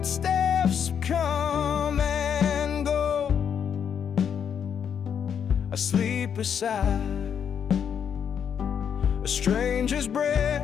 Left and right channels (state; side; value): quieter; right; 7.9 dB